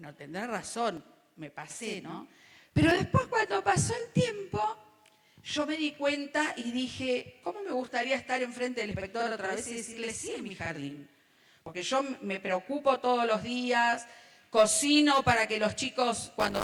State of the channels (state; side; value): identical; both; correlation 1.00